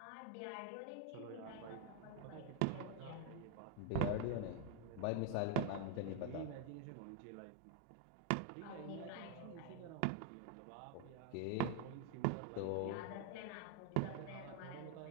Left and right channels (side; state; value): both; different; correlation 0.01